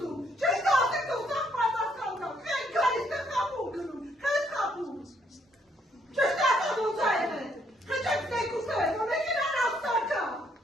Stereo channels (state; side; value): normal; both; correlation 0.70